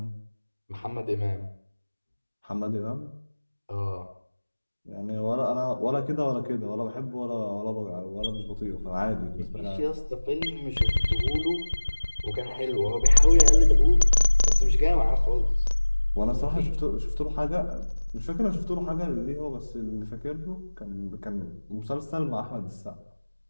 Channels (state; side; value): inverted; both; correlation -1.00